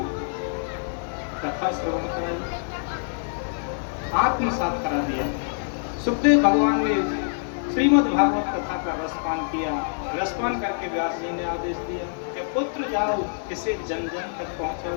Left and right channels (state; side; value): silent; right; 56 dB below the other